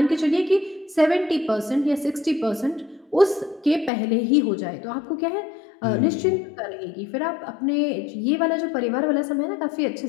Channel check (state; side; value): drops out; right; at 3.9 s